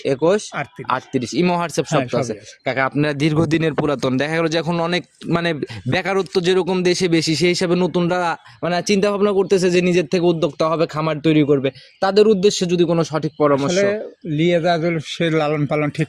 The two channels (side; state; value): both; identical; correlation 1.00